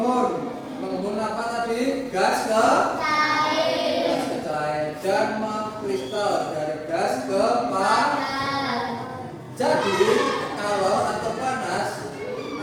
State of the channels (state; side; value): identical; both; correlation 1.00